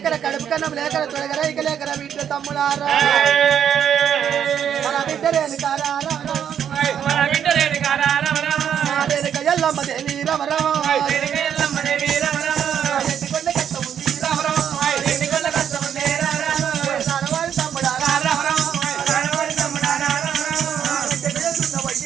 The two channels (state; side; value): quieter; left; 8.9 dB